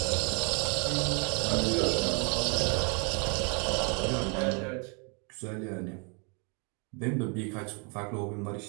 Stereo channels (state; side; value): quieter; left; 35.2 dB